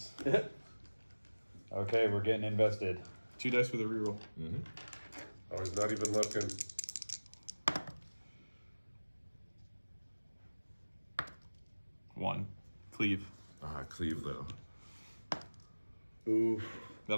Okay, we're getting invested. 2 dice with a reroll. Mhm. Oh, he's not even looking. 1. Cleave. Cleave though. Oof.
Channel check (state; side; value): inverted; both; correlation -1.00